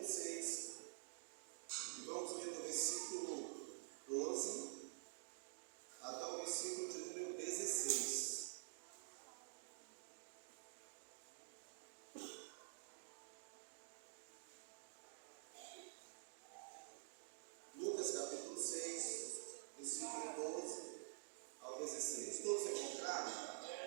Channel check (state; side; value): silent; left; digital silence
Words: 6. E vamos ler do versículo 12 até o versículo de número 16. Lucas capítulo 6, versículo 12 ao 16. Todos encontraram?